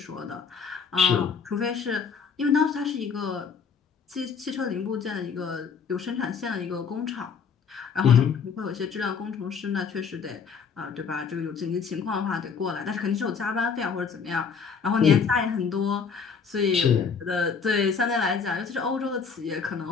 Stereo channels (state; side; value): quieter; right; 6.0 dB